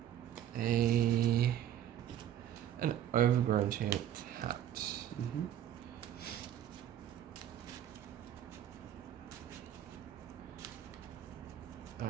an Overgrown Tomb tapped. Mm-hmm.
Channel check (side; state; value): left; quieter; 10.9 dB